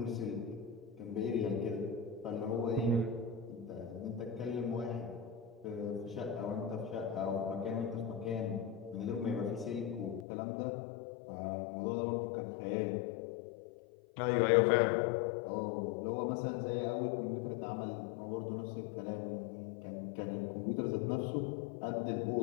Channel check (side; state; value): right; drops out; at 10.2 s